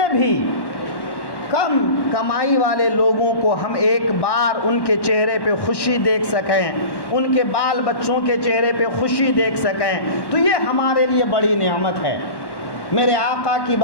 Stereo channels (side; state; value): right; late; 1.1 ms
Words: بھی کم کمائی والے لوگوں کو ہم ایک بار ان کے چہرے پہ خوشی دیکھ سکیں، ان کے بال بچوں کے چہرے پہ خوشی دیکھ سکیں، تو یہ ہمارے لیے بڑی نعمت ہے۔ میرے آقا کی